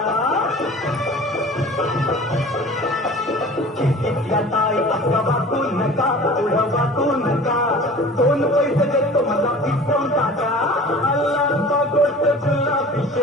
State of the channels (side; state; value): both; normal; correlation 0.42